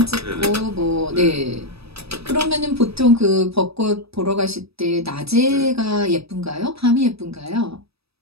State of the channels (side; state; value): left; late; 0.78 ms